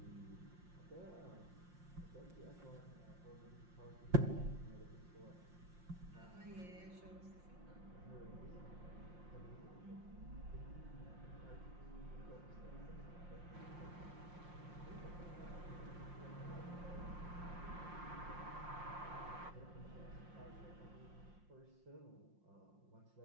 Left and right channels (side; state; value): left; late; 5.7 ms